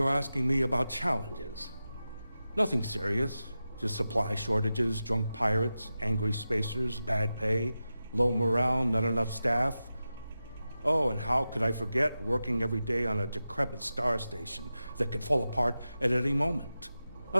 asking me about challenges. Nothing serious. Just supply shortages, drunk pirates, angry spacers, bad pay, low morale, not enough staff. Oh, and how could I forget working every day on a decrepit star station that could fall apart at any moment?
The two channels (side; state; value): both; inverted; correlation -0.93